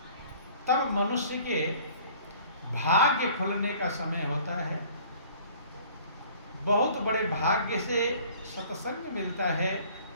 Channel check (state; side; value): inverted; both; correlation -0.51